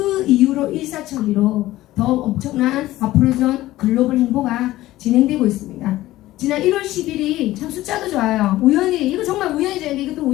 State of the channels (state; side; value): quieter; right; 16.1 dB